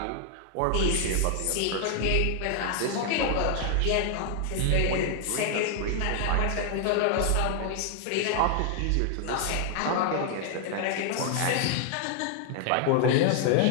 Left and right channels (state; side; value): different; both; correlation 0.00